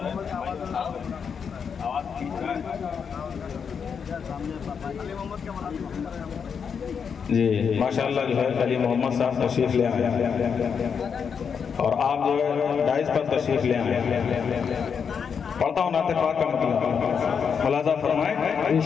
जी माशाल्लाह जो है अली मोहम्मद साहब तशरीफ़ ले आए और आप जो है डाइस पर तशरीफ़ ले आए। पढ़ता हूँ नाते पाक का मतलब, मुलाजा फरमाएं।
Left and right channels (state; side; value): quieter; right; 6.6 dB